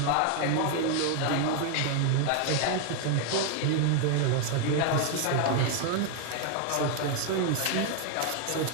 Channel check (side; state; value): both; different; correlation 0.00